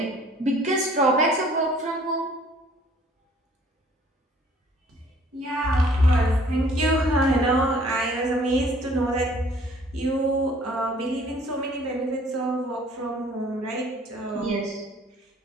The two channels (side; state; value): both; normal; correlation 0.56